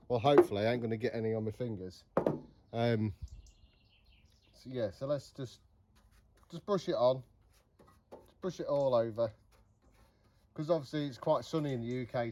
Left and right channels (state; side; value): identical; both; correlation 1.00